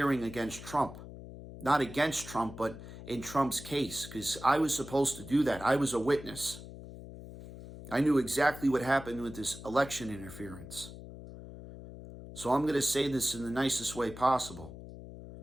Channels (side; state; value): left; noise; hum, 13 dB below the sound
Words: against Trump. Not against Trump, but in Trump's case, because I was supposed to do that. I was a witness. I knew exactly what happened with this election interference. So I'm going to say this in the nicest way possible.